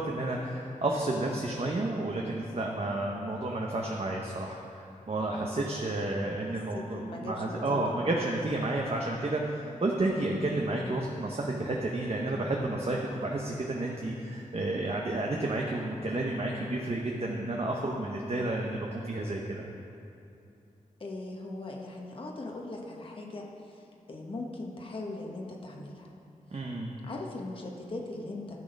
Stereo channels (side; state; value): both; normal; correlation 0.67